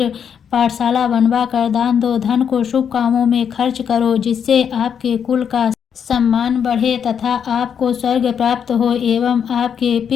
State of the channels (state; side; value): quieter; right; 7.7 dB